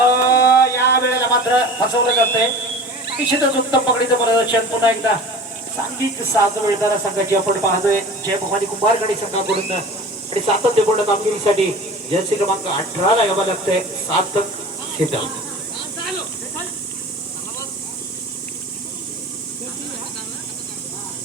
या वेळेला मात्र फसवलं जातंय. निश्चितच उत्तम पकडीचं प्रदर्शन पुन्हा एकदा सांघिक साथ मिळणाऱ्या संघाची आपण पाहतोय. जय भवानी कुंभारगडी संघाकडून आणि सातत्यपूर्ण कामगिरीसाठी जर्सी क्रमांक 18 ला यावं लागतंय सार्थक शीतल.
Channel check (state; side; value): normal; both; correlation 0.38